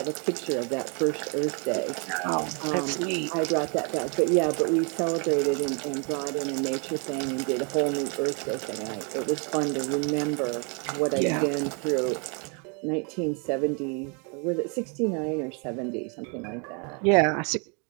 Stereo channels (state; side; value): quieter; left; 36.2 dB